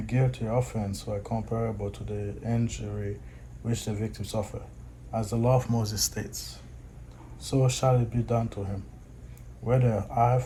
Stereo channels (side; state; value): both; identical; correlation 1.00